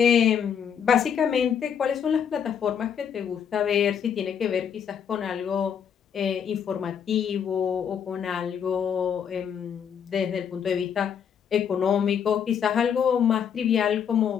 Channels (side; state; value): right; quieter; 7.9 dB